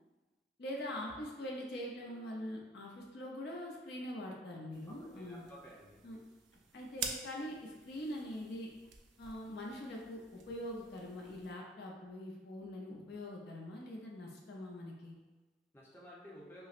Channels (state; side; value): normal; both; correlation 0.50